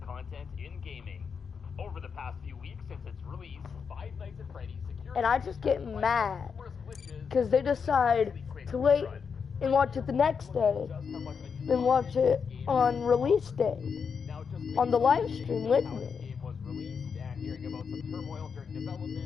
content in gaming. Over the past few weeks since its release, Five Nights at Freddy's security And I just get mad because they decide to wait and watch it the next day, then watch it on release day on the live stream with me. The game was released and hearing about some turmoil during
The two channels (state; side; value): quieter; right; 6.1 dB